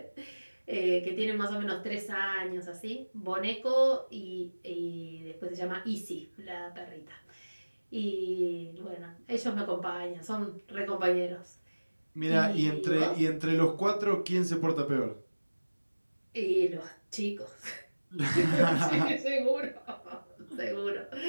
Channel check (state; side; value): inverted; both; correlation -1.00